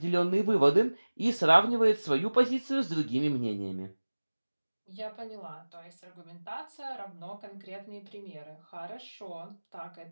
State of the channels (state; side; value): inverted; both; correlation -1.00